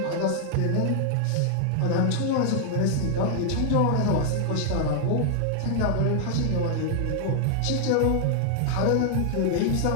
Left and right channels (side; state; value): both; different; correlation 0.00